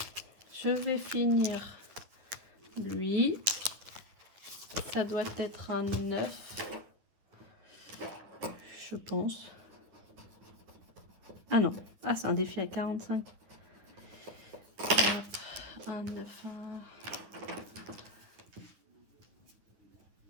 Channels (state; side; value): late; left; 10 ms